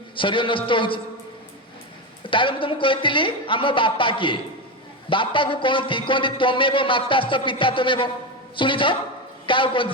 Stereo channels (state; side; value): normal; both; correlation 0.15